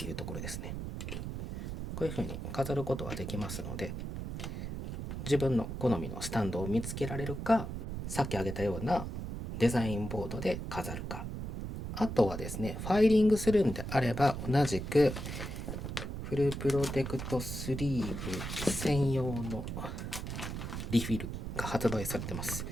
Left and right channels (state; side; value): noise; right; rumble, 5 dB below the sound